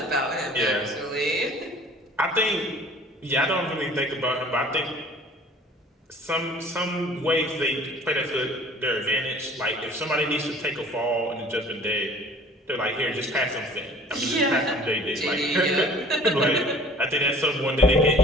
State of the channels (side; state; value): both; normal; correlation 0.49